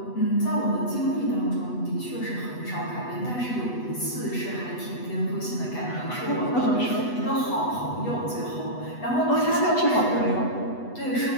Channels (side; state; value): right; late; 8.1 ms